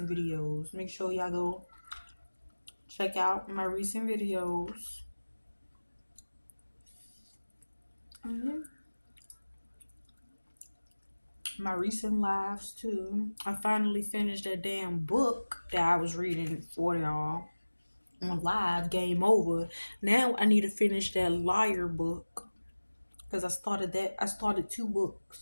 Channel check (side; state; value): both; inverted; correlation -1.00